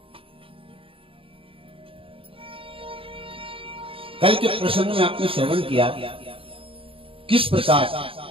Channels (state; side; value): late; left; 0.26 ms